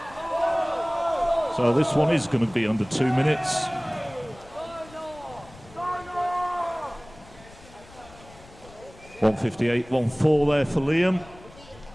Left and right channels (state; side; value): noise; left; rumble, 22 dB below the sound